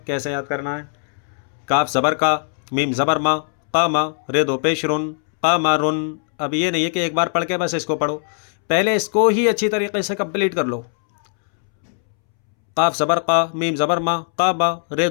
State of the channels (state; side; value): silent; right; 66 dB below the other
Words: کیسے یاد کرنا ہے. کاف زبر کا میم زبر ما قاما رے دو پیش رن قمرن. اب یہ نہیں ہے کہ ایک بار پڑھ کے بس اس کو پڑھو، پہلے اس کو ہی اچھی طریقے سے کمپلیٹ کر لو. قاف زبر قا، میم زبر ما، قابا، رے